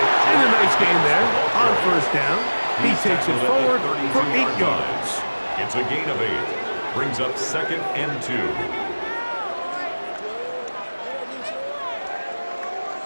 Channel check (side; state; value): both; inverted; correlation -1.00